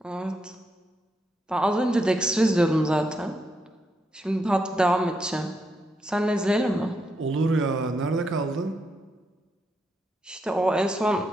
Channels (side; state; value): both; normal; correlation 0.81